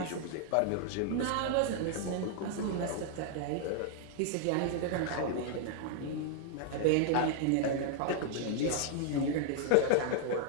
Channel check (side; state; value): both; different; correlation 0.00